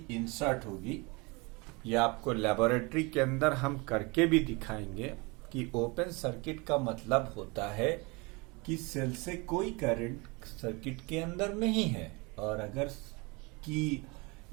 इंसर्ट होगी, ये आपको लेबोरेटरी के अंदर हम करके भी दिखाएंगे कि ओपन सर्किट का मतलब होता है कि सेल से कोई करंट सर्किट के अंदर नहीं है, और अगर की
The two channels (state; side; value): quieter; left; 27.5 dB